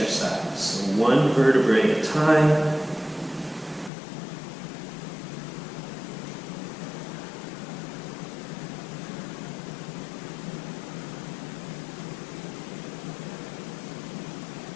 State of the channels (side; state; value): right; drops out; at 3.9 s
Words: So one vertebrae at a time.